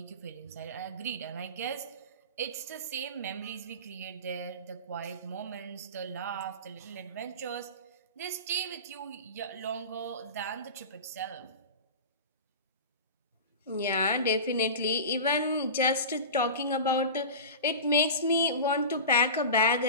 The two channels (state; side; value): inverted; both; correlation -0.30